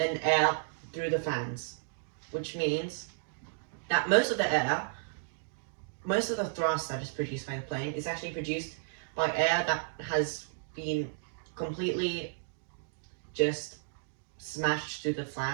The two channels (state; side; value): silent; left; digital silence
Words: air through the fans, which means that most of the thrust that is produced by the plane is actually produced by air that has been completely just smashed through the